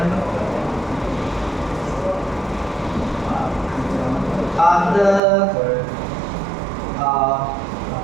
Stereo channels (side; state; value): left; drops out; at 5.2 s